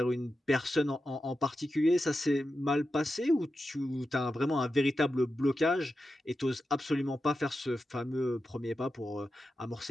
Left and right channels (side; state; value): both; normal; correlation 0.90